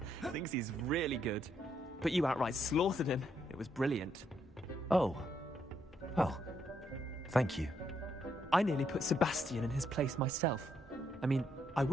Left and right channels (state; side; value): normal; both; correlation 0.75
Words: Thinks he's really good. But you outright slaughtered him. It was brilliant. Oh. Well, thank you. I nearly put Sebastian in his place myself. I mean, I